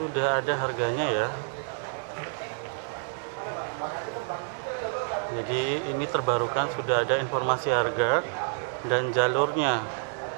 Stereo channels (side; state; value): left; silent; digital silence